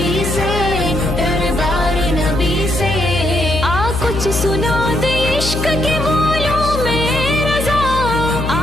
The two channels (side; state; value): left; noise; hum, 4 dB below the sound